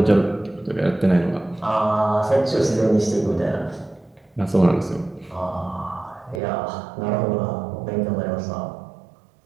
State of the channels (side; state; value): left; drops out; at 6.4 s